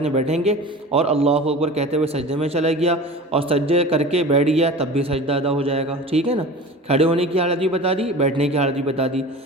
میں بیٹھیں گے، اور اللہ اکبر کہتے ہوئے سجدے میں چلا گیا اور سجدے کر کے بیٹھ گیا، تب بھی سجدہ ادا ہو جائے گا، ٹھیک ہے نا۔ کھڑے ہونے کی حالت بھی بتا دی، بیٹھنے کی حالت بھی بتا دی۔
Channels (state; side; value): normal; both; correlation 0.36